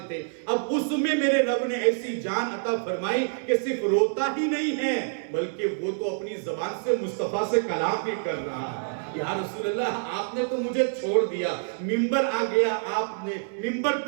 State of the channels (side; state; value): left; silent; 60 dB below the other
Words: تھے، اب اس میں میرے رب نے ایسی جان عطا فرمائی کہ صرف روتا ہی نہیں ہے بلکہ وہ تو اپنی زبان سے مصطفیٰ سے کلام بھی کر رہا ہے. یا رسول اللہ آپ نے تو مجھے چھوڑ دیا، ممبر آ گیا، آپ نے ممبر